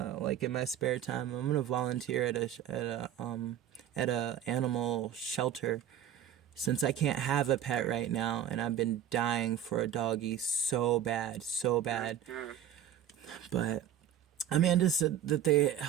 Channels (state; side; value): quieter; left; 10.0 dB